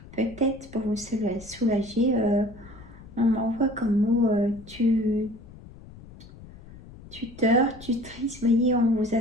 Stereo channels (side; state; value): left; noise; rumble, 19 dB below the sound